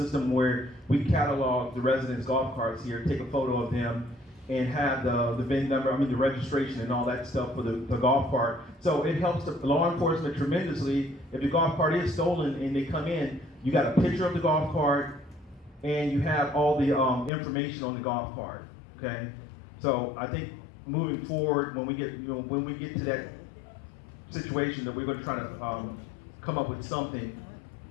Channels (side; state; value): right; drops out; at 17.3 s